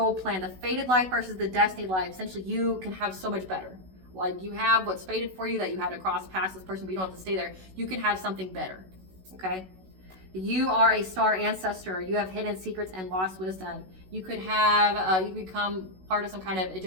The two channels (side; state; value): left; late; 16 ms